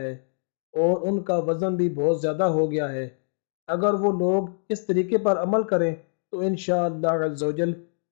اور ان کا وزن بھی بہت زیادہ ہو گیا ہے، اگر وہ لوگ اس طریقے پر عمل کریں تو انشاءاللہ عز و جل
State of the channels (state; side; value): silent; right; digital silence